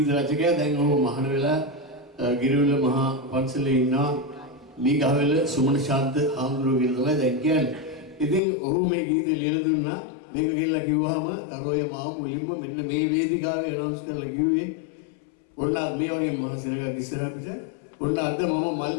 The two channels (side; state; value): right; drops out; at 8.4 s